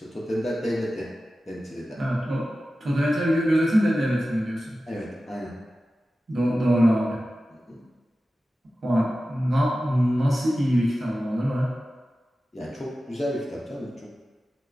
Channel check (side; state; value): both; normal; correlation 0.94